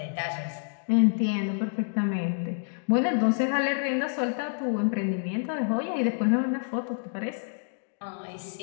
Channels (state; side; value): silent; right; digital silence